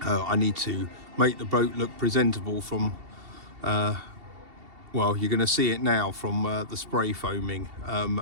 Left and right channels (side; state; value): left; late; 2.7 ms